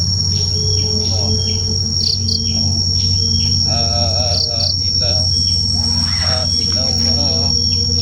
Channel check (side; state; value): both; identical; correlation 1.00